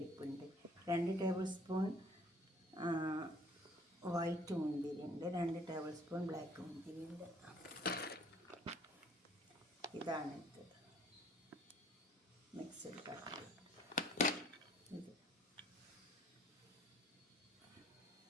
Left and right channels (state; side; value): normal; both; correlation 0.58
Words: 2 ടേബിൾ സ്പൂൺ വൈറ്റ് മുന്തിരി ഉണ്ട്, 2 ടേബിൾ സ്പൂൺ ബ്ലാക്ക് മുന്തിരി ഉണ്ട്. ഇതാണ് ഇത് മിക്സഡ് കട്ട്.